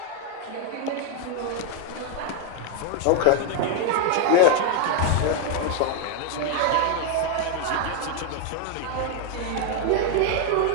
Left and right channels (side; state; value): both; different; correlation 0.00